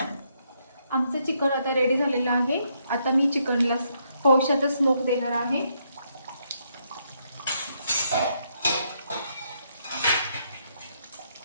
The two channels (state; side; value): inverted; both; correlation -0.76